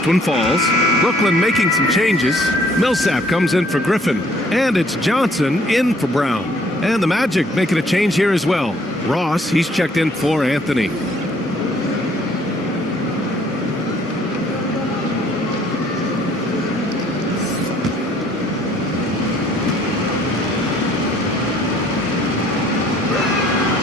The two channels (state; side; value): normal; both; correlation 0.61